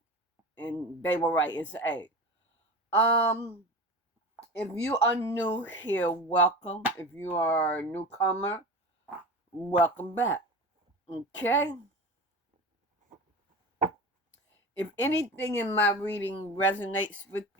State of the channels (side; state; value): both; normal; correlation 0.30